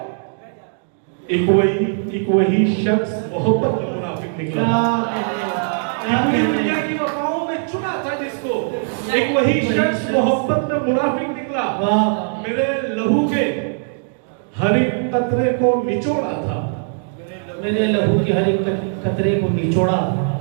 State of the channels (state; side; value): silent; left; digital silence